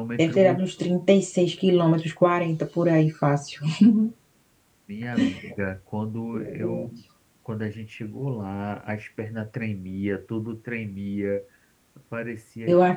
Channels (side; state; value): both; identical; correlation 1.00